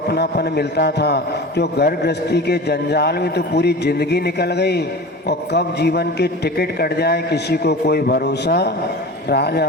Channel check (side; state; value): both; normal; correlation 0.34